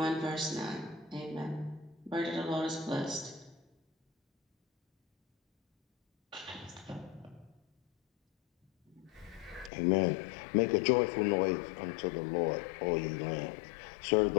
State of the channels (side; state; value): right; drops out; at 9.7 s